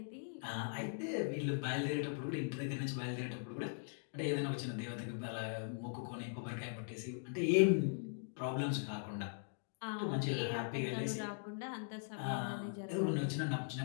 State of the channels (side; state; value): right; silent; digital silence